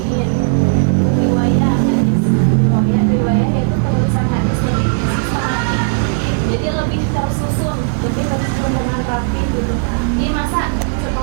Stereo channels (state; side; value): silent; left; 63 dB below the other